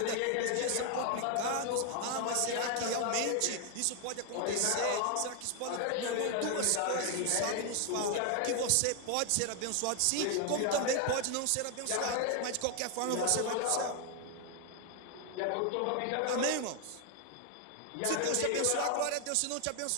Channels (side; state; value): both; different; correlation 0.00